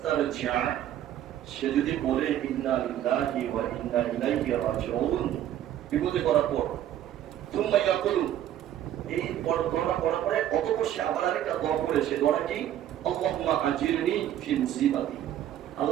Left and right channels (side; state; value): left; quieter; 11.5 dB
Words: সে যদি বলে ইন্না লিল্লাহি ওয়া ইন্না ইলাইহি রাজিউন, বিপদে পড়ার পর তুম্মা ইয়াকুলু, এই দোয়াটা পড়ার পরে অতঃপর সে আবার আরেকটা দোয়া করে, সে দোয়াটা কি আল্লাহুম্মা আজিরনি ফি মুসিবাতি,